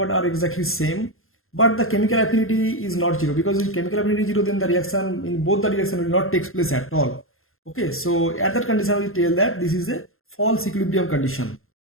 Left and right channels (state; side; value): late; right; 0.61 ms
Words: are exactly same, but the chemical affinity is not 0. Because if chemical affinity is 0, then the reaction in both the direction will not take place at all. Okay, so at that condition we tell that this is a false equilibrium condition.